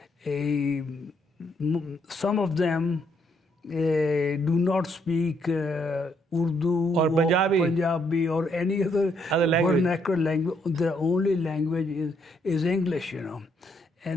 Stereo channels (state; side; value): normal; both; correlation 0.73